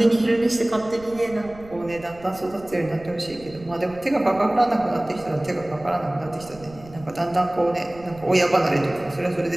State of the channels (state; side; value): noise; right; rumble, 20 dB below the sound